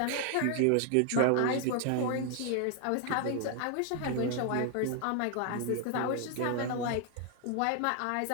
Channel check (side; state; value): both; different; correlation 0.00